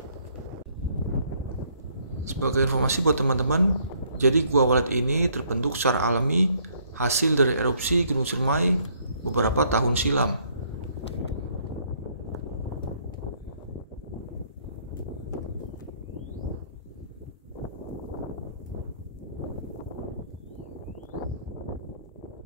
Sebagai informasi buat teman-teman, jadi Gua Walet ini terbentuk secara alami hasil dari erupsi Gunung Ciremai beberapa tahun silam.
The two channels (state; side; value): inverted; both; correlation -0.65